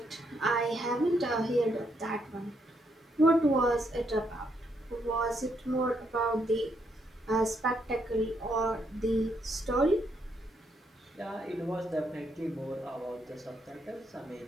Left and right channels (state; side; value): normal; both; correlation 0.76